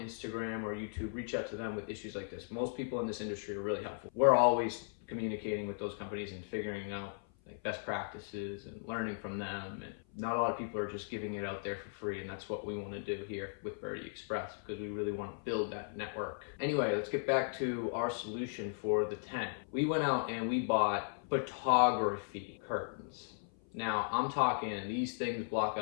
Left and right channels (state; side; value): silent; right; 53 dB below the other